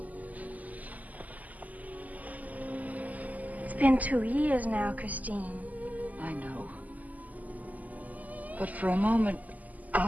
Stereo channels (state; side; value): late; left; 0.078 ms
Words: It's been 2 years now, Christine. I know. But for a moment,